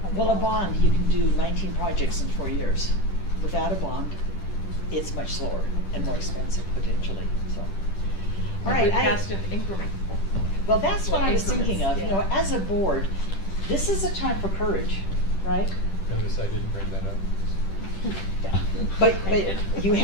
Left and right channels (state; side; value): late; right; 10 ms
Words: Well, a bond, you can do 19 projects in 4 years. Without a bond, it's much slower and more expensive potentially, so. All right, we passed an increment. well, that's what I was increments, thinking of, you know, yeah. as a board, this is a time for courage, right? Notice I didn't bring that up. Yeah. But you